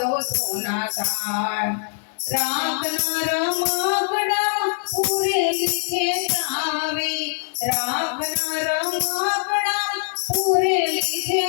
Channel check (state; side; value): silent; right; 60 dB below the other